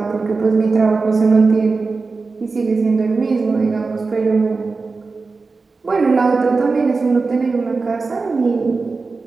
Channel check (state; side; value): quieter; left; 4.1 dB